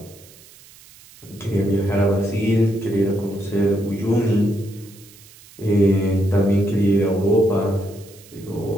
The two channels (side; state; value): right; noise; hiss, 23 dB below the sound